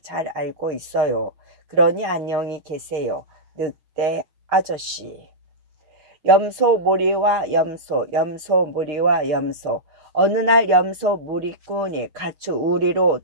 알고 있어요. 그러니 안녕히 계세요, 늑대 아저씨. 염소 무리와 염소, 염소 무리와 염소. 어느 날 염소 무리꾼이 가축 우리로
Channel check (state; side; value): late; left; 6.2 ms